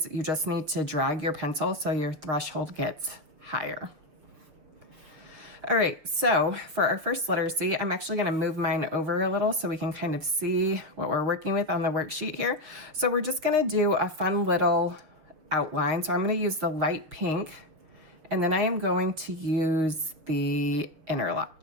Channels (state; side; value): late; left; 6.9 ms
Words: You just need to drag your pencil so your threshold gets higher. All right, so for our first letter C, I'm actually gonna move mine over a little so we can kind of see what we're working with on the worksheet here. So we're just gonna do a fun little outline. So I'm going to use the light pink, and then I am going to use the